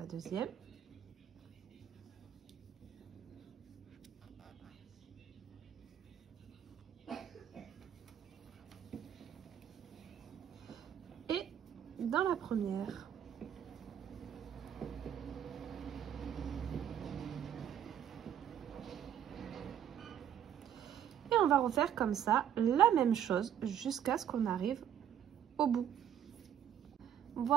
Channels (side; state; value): left; quieter; 9.7 dB